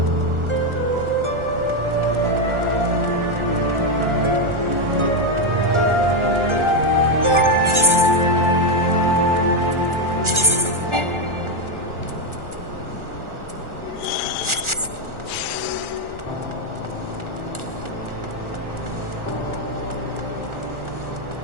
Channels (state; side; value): late; left; 1.4 ms